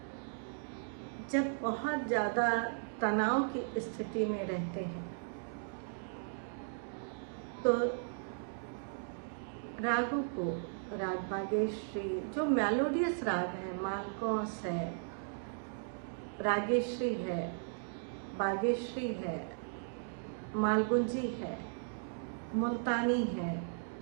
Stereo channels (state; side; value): silent; left; digital silence